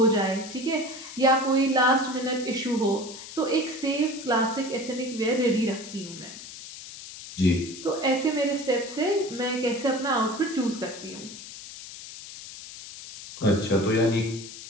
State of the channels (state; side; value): noise; left; hiss, 13 dB below the sound